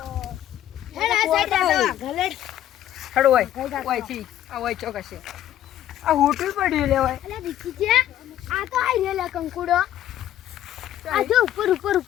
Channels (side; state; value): right; quieter; 12.0 dB